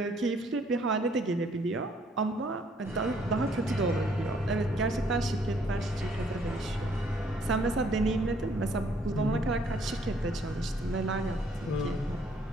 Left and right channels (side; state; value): both; normal; correlation 0.65